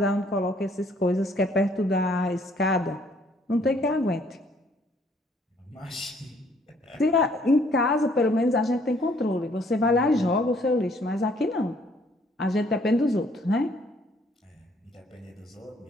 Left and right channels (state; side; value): normal; both; correlation 0.64